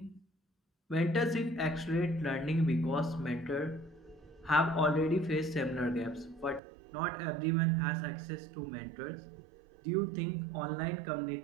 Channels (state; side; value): drops out; left; at 6.6 s